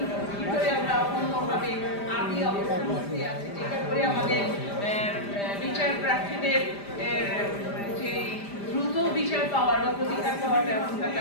ভিতরে আমরা অন্যভাবে আদি অবস্থার মধ্যে আছি, যেটা করে আমাদের বিচার প্রার্থীদের যে দ্রুত বিচার পাওয়ার বা প্রতিকার পাওয়ার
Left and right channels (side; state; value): right; late; 5.0 ms